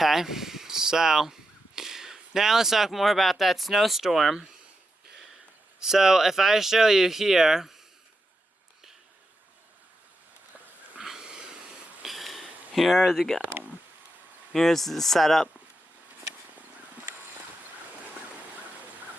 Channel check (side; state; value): both; normal; correlation 0.86